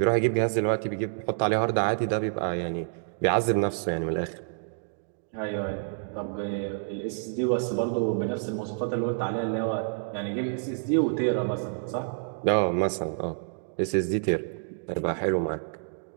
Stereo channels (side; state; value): left; silent; digital silence